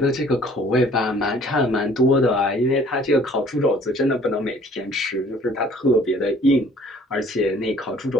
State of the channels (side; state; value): both; normal; correlation 0.55